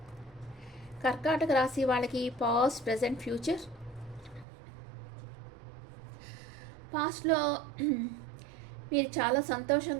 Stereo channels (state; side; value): drops out; left; at 4.5 s